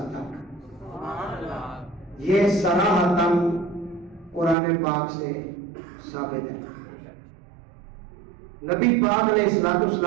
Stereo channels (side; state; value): left; drops out; at 4.5 s